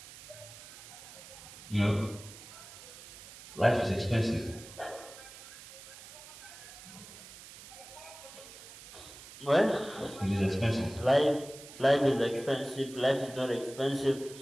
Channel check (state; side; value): noise; right; hiss, 16 dB below the sound